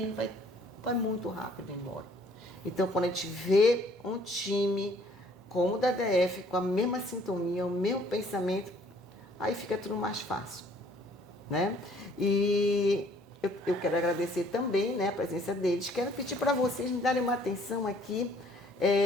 vai muito rápido embora. Então quando a gente vê um time como o da DF, com a mesma sintonia, o mesmo pensamento, aí fica tudo mais fácil, né? E eu quero agradecer também, né, a presença deles. Quero pedir para vocês me darem uma atenção aqui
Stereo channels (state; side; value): normal; both; correlation 0.59